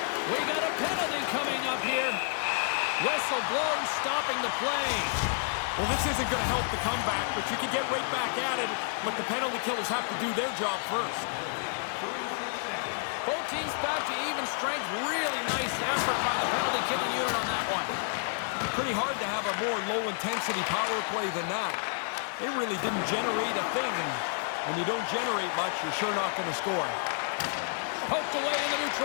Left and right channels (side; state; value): right; silent; digital silence